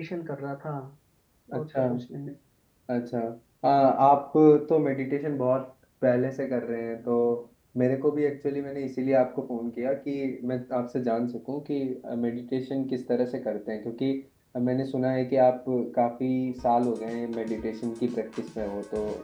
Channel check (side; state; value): both; identical; correlation 1.00